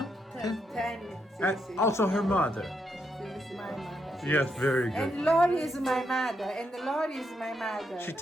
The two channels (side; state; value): both; normal; correlation 0.80